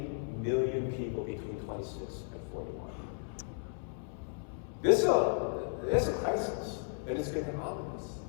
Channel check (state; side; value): silent; right; 55 dB below the other